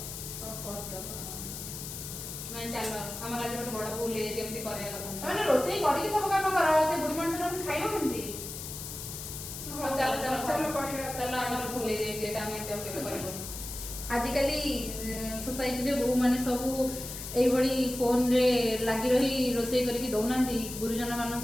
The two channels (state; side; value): noise; left; hiss, 8 dB below the sound